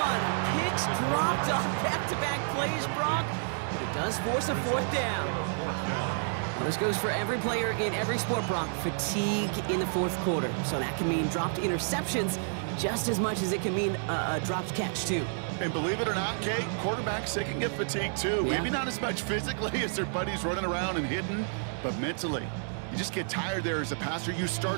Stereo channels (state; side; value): silent; left; digital silence